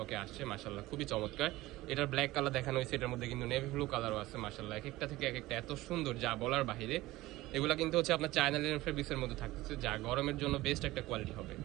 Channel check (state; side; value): quieter; left; 18.1 dB